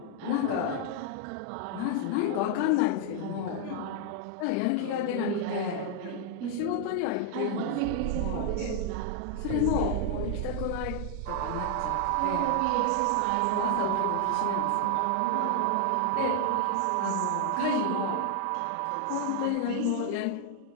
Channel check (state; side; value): different; both; correlation 0.00